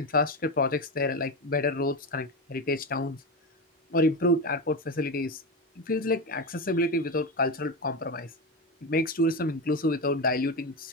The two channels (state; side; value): normal; both; correlation 0.17